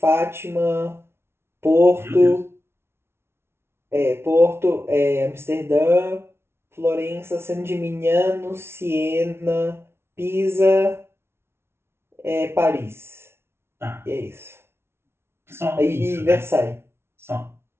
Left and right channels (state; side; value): late; left; 0.12 ms